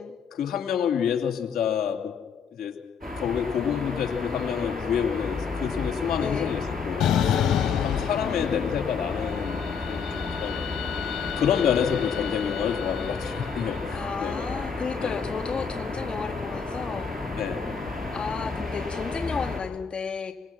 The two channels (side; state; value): right; quieter; 6.3 dB